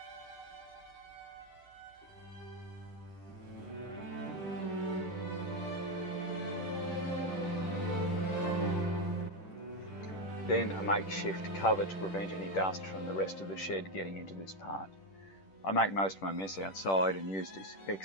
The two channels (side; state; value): right; late; 10 ms